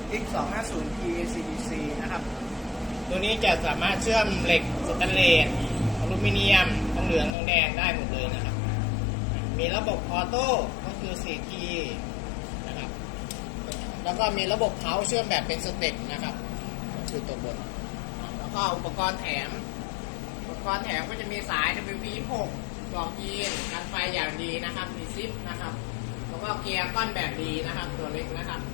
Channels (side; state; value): right; drops out; at 7.4 s